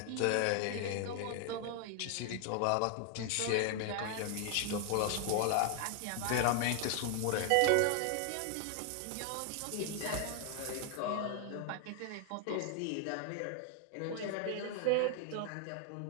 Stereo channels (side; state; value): both; different; correlation 0.00